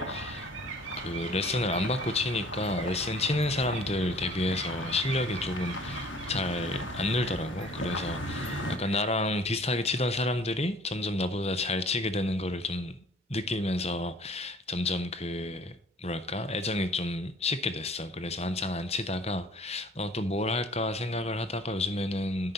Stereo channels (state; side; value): normal; both; correlation 0.52